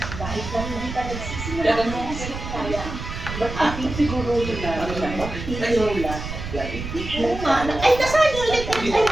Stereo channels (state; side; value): noise; right; rumble, 8 dB below the sound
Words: dahil lang hindi pa nagsisimula ng kaya. Ating siguro yun na Lola, Oo nga. Ay, nasaan yung electric? Ay,